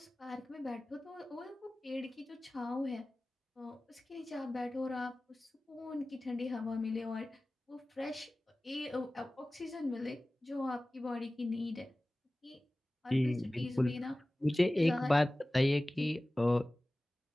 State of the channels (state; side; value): normal; both; correlation 0.97